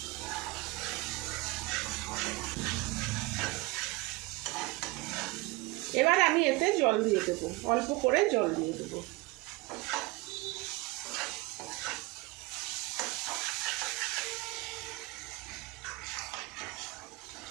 এবার আমি এতে জল দিয়ে দেবো, অল্প করে জল দিয়ে দেবো।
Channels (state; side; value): quieter; left; 22.9 dB